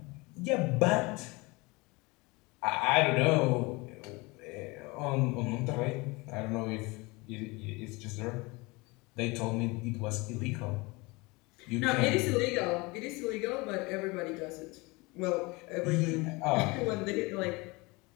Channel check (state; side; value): quieter; right; 25.0 dB